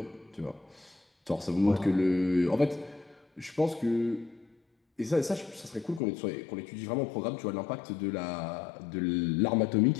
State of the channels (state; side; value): drops out; right; at 6.0 s